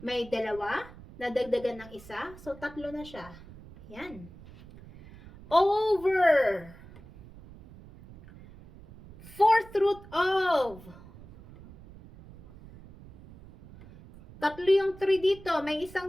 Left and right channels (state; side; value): noise; right; rumble, 19 dB below the sound